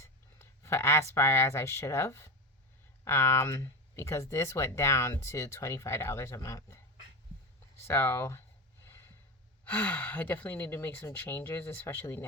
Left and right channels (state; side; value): normal; both; correlation 0.20